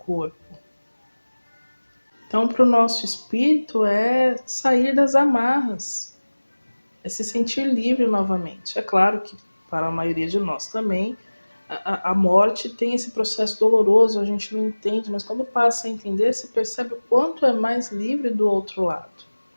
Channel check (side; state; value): both; inverted; correlation -1.00